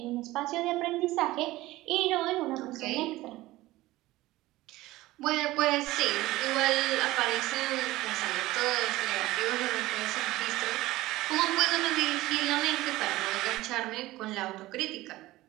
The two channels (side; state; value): left; quieter; 17.8 dB